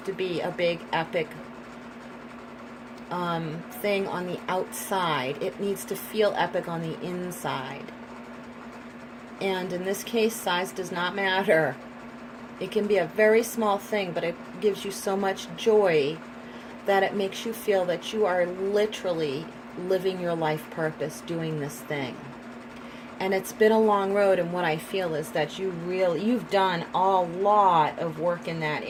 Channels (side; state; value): both; identical; correlation 1.00